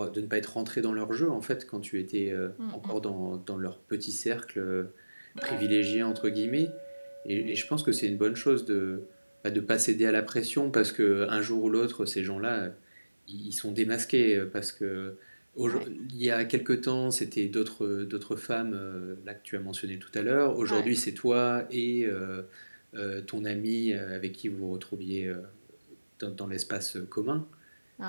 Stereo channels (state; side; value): inverted; both; correlation -1.00